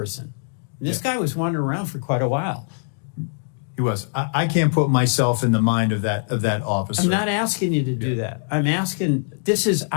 And this guy was wandering around for quite a while. He was. I can't put myself in the mind of that officer. I'm not asking you to do that. I'm asking, this is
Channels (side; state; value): right; silent; digital silence